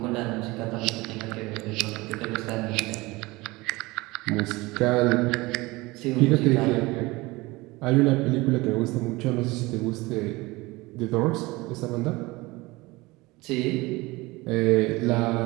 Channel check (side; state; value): left; quieter; 22.0 dB